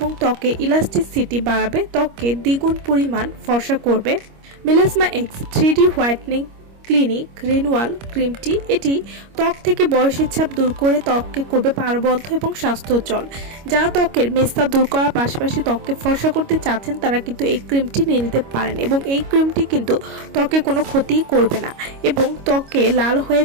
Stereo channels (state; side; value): late; left; 25 ms